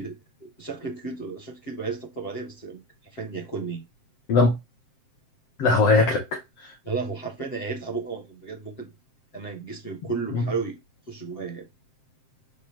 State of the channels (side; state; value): right; late; 7.6 ms